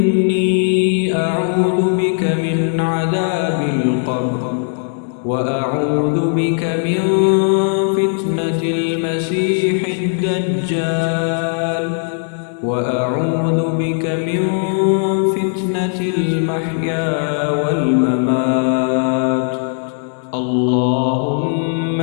أعوذ بك من عذاب القبر، وأعوذ بك من فتنة المسيح الدجال، وأعوذ بك من فتنة المحيا والممات. اللهم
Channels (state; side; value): silent; right; 64 dB below the other